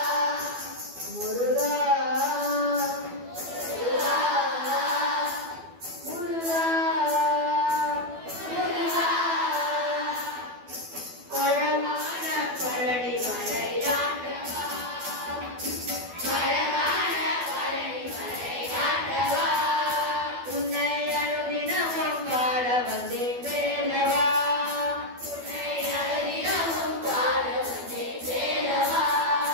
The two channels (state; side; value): late; left; 12 ms